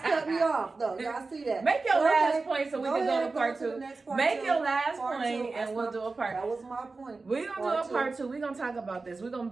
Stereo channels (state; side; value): quieter; left; 3.8 dB